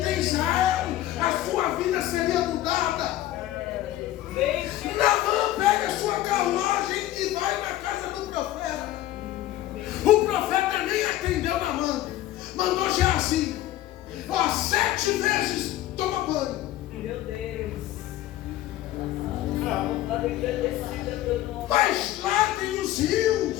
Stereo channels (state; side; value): quieter; right; 14.3 dB